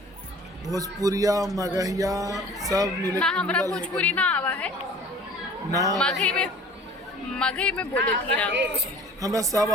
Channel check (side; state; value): both; normal; correlation 0.47